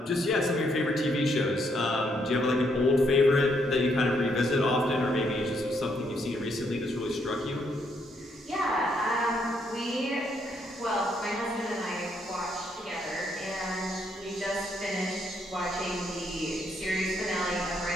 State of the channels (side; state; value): both; normal; correlation 0.74